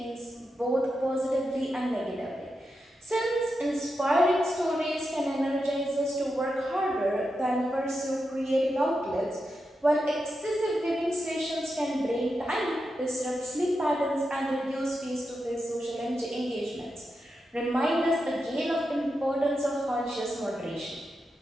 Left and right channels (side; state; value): both; normal; correlation 0.88